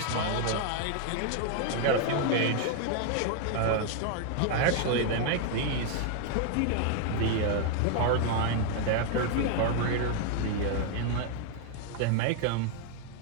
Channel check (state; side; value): different; both; correlation 0.00